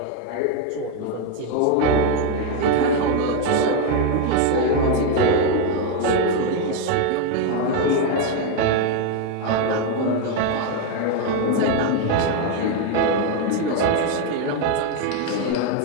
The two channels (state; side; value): different; both; correlation 0.01